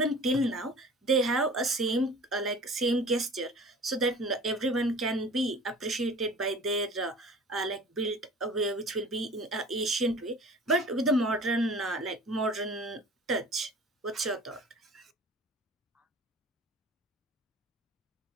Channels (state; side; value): normal; both; correlation 0.43